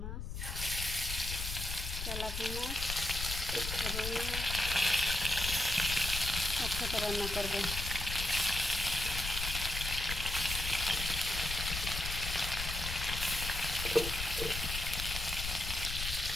মাছ, তেলাপিয়া মাছ, রুই মাছ একসাথে রান্না করব।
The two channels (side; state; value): left; noise; rumble, 5 dB below the sound